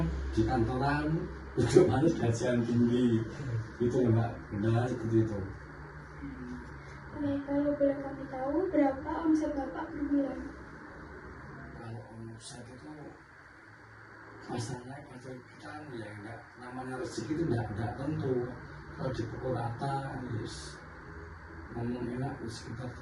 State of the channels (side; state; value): both; identical; correlation 1.00